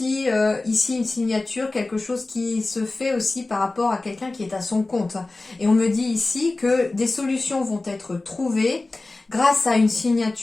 ici une signature, quelque chose qui se fait aussi par rapport à quelqu'un qui est à son compte. Et on me dit ici que des solutions vont être trouvées grâce à une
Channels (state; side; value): quieter; right; 3.2 dB